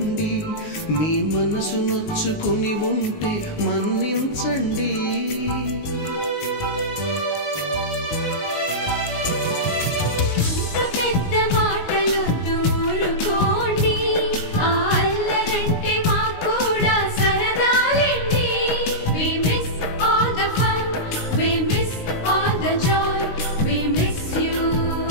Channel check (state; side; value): late; right; 19 ms